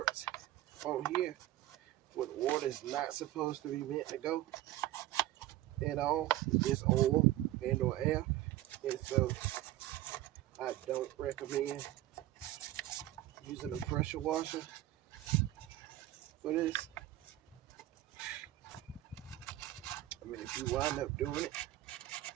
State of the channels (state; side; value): quieter; left; 15.1 dB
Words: on here where the water is not supposed to be meant to go at all. It's oil and or air, and so I don't recommend using a pressure washer for this. I mean, if you wind up doing it,